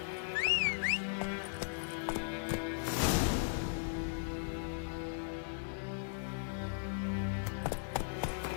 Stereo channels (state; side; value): silent; right; digital silence